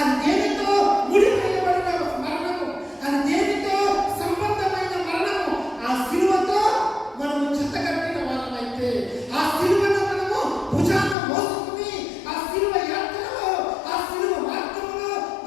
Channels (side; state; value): right; drops out; at 11.2 s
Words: దేనితో ముడివేయబడిన మరణము, అది దేనితో సంబంధమైన మరణము. ఆ శిలువతో మనము జతకట్టిన వారమైతే, ఆ శిలువను మనము భుజాన మోసుకుని ఆ శిలువ యాత్రలో, ఆ శిలువ మార్గంలో